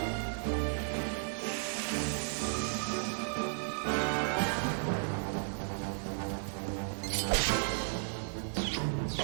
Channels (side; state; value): left; silent; digital silence